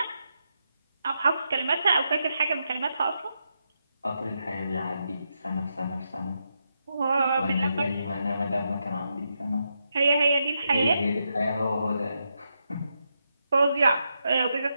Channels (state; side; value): inverted; both; correlation -0.83